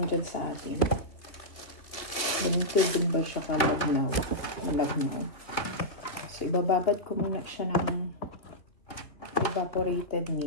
dyan sa atin. Ganito din ba siya kalagnaw? Malagnaw. So, ibababad ko muna siya ng evaporated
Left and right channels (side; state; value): right; late; 2.9 ms